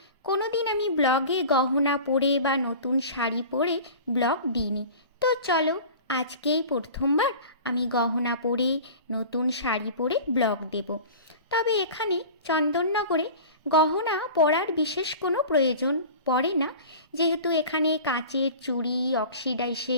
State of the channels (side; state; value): both; inverted; correlation -0.38